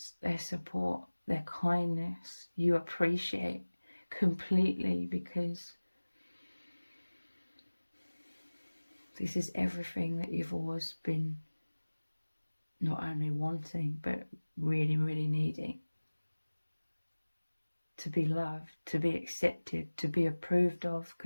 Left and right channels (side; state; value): both; inverted; correlation -1.00